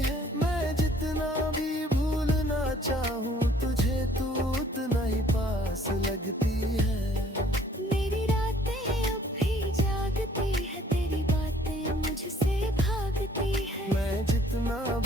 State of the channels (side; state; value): both; normal; correlation 0.58